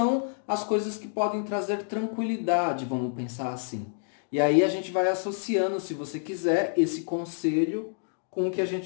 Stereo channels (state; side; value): silent; right; digital silence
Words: as coisas que podem trazer tranquilidade, vamos pensar assim. E aí a gente vai associando, se você quiser, esse conselho com o que a